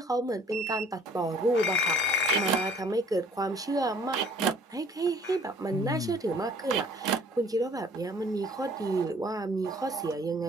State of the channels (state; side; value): normal; both; correlation 0.55